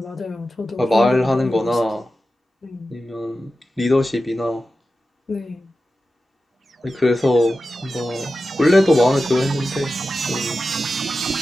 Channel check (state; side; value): normal; both; correlation 0.92